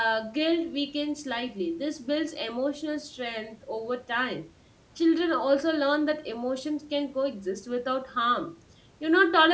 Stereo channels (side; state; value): both; identical; correlation 1.00